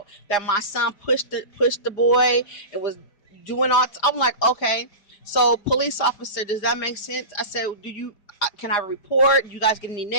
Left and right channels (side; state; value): right; late; 4.9 ms